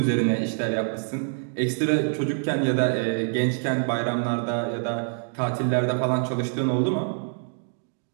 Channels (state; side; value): silent; left; digital silence